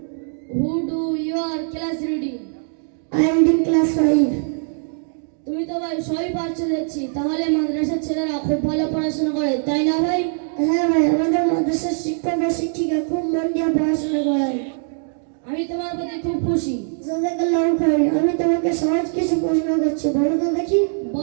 Who do your class reading? I am in class 5. তুমি তো ভাই সবই পারছো দেখছি, তাহলে মাদ্রাসার ছেলেরা খুব ভালো পড়াশোনা করে, তাই না ভাই? হ্যাঁ ভাই, আমাদের মাদ্রাসার শিক্ষক ও শিক্ষিকা খুব মন দিয়ে পড়াশোনা করায়। আমি তোমার প্রতি খুব খুশি। জাযাকাল্লাহু খাইর। আমি তোমাকে সহজ কিছু প্রশ্ন করছি, বলো তো দেখি।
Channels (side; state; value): left; silent; 65 dB below the other